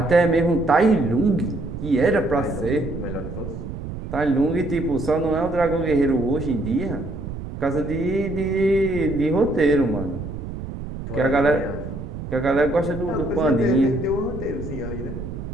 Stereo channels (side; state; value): right; noise; rumble, 8 dB below the sound